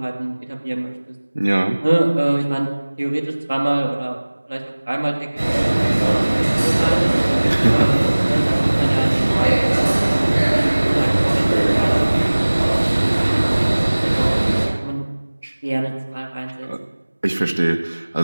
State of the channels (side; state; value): both; inverted; correlation -1.00